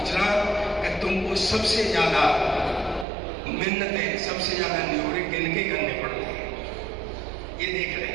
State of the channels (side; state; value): left; drops out; at 3.1 s